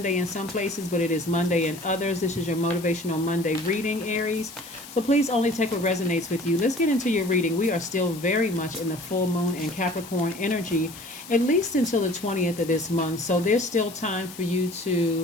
in some places, but it is Monday in others. This is your Motivational Monday reading, Aries. So please only take what resonates with you. Let's get into your reading. We are still very much in the full moon and Capricorn energy, at least until the 20th of this month. So there's still time for you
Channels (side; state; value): left; noise; hiss, 16 dB below the sound